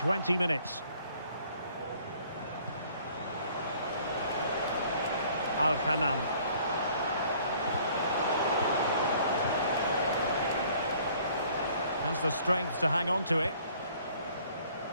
minutes. Al-Ghanam. Has the strength to hang on to it.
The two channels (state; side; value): inverted; both; correlation -0.57